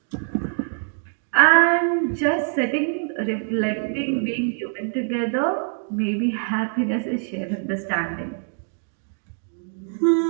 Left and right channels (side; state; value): left; silent; 63 dB below the other